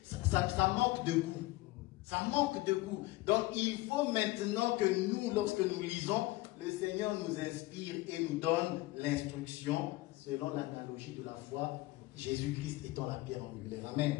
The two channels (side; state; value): right; quieter; 19.4 dB